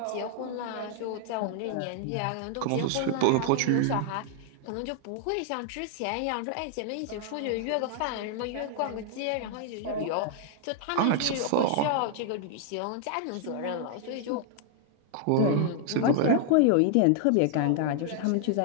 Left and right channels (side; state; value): both; different; correlation 0.00